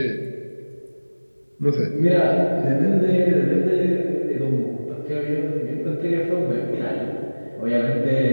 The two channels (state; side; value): inverted; both; correlation -1.00